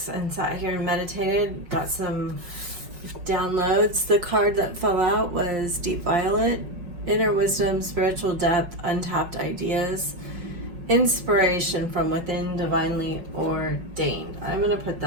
and sat here and meditated, got some downloads. The card that fell out was Deep Violet, Inner Wisdom, Spiritual Depth, Untapped Ideas, Inspiration from Within, Divinely Ordained. I'm going to put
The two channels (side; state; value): left; late; 5.4 ms